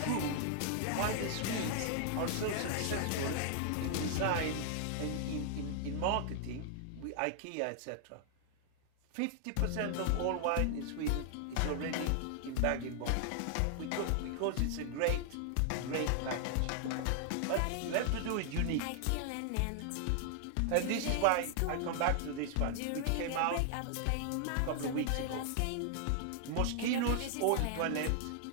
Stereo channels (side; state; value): both; different; correlation 0.00